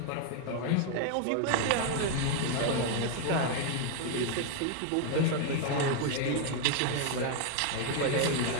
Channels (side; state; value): both; different; correlation 0.00